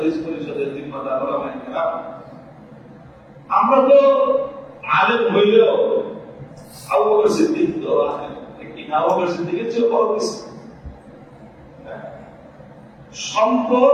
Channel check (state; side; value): identical; both; correlation 1.00